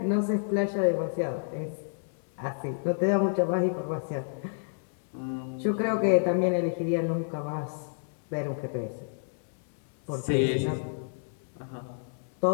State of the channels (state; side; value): silent; right; 58 dB below the other